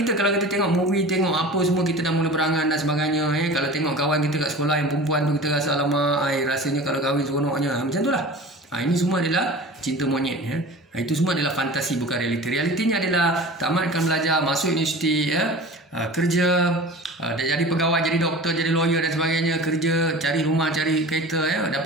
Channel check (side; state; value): both; normal; correlation 0.37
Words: kalau kita tengok movie, tengok apa semua, kita dah mula berangan dan sebagainya. Kalau tengok kawan kita kat sekolah yang perempuan tu, kita rasa lama, rasanya kalau kahwin seronoknya. Macam tu lah. Ini semua adalah cinta monyet. Itu semua adalah fantasi, bukan realiti. Realitinya adalah tamatkan belajar, masuk universiti, kerja, jadi pegawai, jadi doktor, jadi lawyer dan sebagainya, kerja, cari rumah, cari kereta,